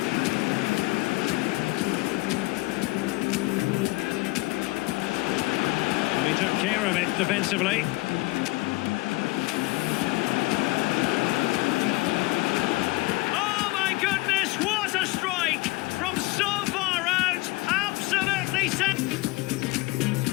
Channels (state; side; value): quieter; right; 22.8 dB